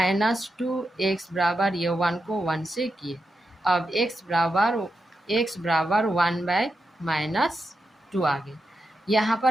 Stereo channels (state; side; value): normal; both; correlation 0.87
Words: बराबर ये 1 को 1 से किए, अब x बराबर 1/-2 आ गए। यहाँ